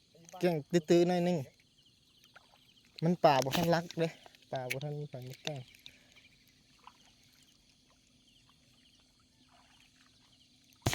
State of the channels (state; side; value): identical; both; correlation 1.00